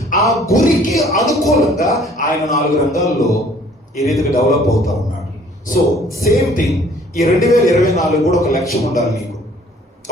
ఆ గురికి అనుకూలంగా ఆయన 4 రంగాల్లో ఈ రీతిగా డెవలప్ అవుతా ఉన్నాడు. సో సేమ్ థింగ్ ఈ 2024 కూడా ఒక లక్ష్యం ఉండాలి నీకు.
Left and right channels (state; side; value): normal; both; correlation 0.56